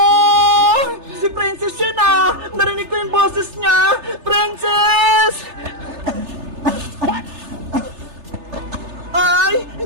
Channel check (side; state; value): left; late; 3.3 ms